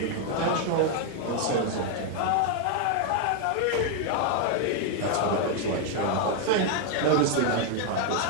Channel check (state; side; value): different; both; correlation 0.00